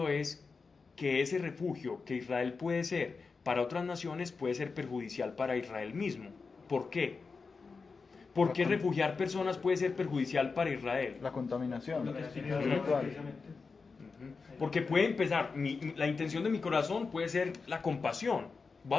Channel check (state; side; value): quieter; right; 4.6 dB